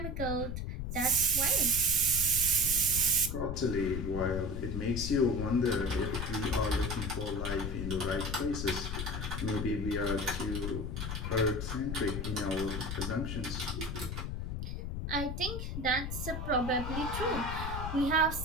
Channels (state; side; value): noise; left; rumble, 4 dB below the sound